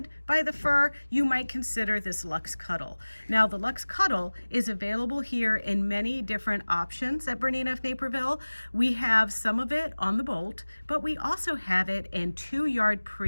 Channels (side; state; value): both; inverted; correlation -1.00